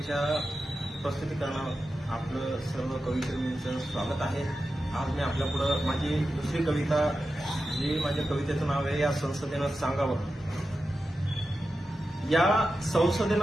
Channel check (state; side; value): normal; both; correlation 0.91